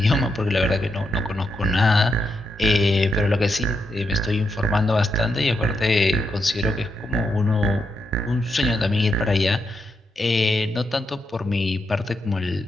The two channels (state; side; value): normal; both; correlation 0.82